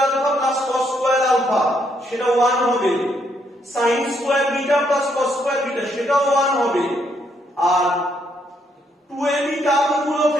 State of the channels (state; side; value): normal; both; correlation 0.74